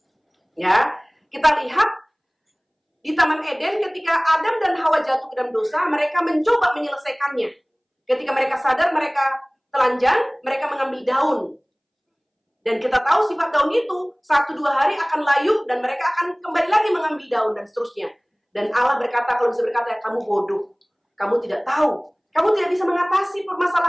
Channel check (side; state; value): both; identical; correlation 1.00